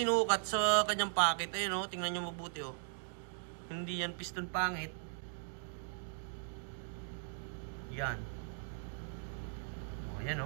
sa kanyang pocket. Ayun o, tingnan nyo mabuti o. Hindi yan piston pangit. Yan. O, yan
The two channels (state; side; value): silent; left; digital silence